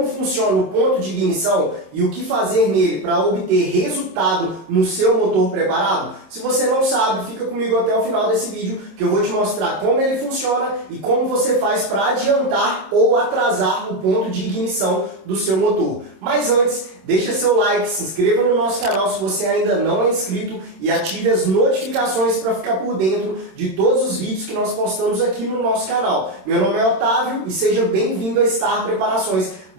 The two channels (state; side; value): late; left; 26 ms